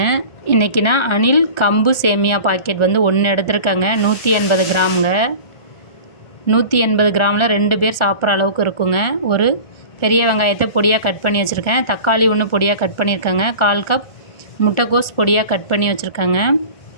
இன்றைக்கி நான் அணில் கம்பு சேமியா பாக்கெட் 1 எடுத்துருக்கேங்க. 180 கிராமுங்க. 180 கிராமில் 2 பேர் சாப்பிட்ற அளவுக்கு இருக்குங்க. ஒரு பெரிய வெங்காயத்தை பொடியாக கட் பண்ணி வச்சுருக்கேன். தக்காளி 1 பொடியாக கட் பண்ணியிருக்கேங்க. 1/4 கப் முட்டைக்கோஸ் பொடியாக கட் பண்ணி வச்சுருக்கேங்க.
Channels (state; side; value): late; right; 1.4 ms